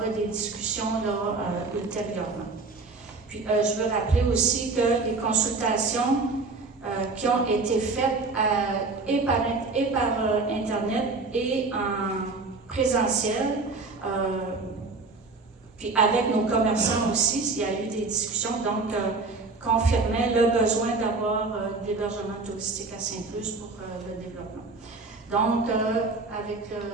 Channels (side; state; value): left; quieter; 3.8 dB